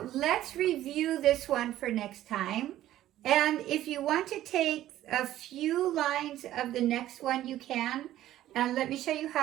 let's review this one for next time. And if you want to take a few lines of the next one, you can. And let me show you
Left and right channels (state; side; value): quieter; left; 13.5 dB